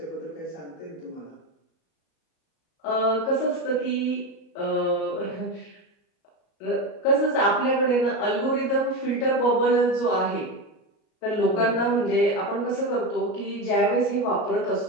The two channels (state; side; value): late; right; 37 ms